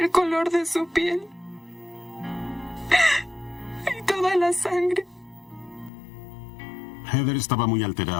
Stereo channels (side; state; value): right; drops out; at 5.9 s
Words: color de su piel y toda la sangre. Heather estaba muy